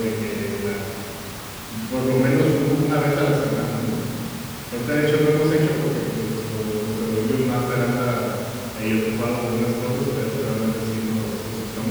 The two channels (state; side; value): identical; both; correlation 1.00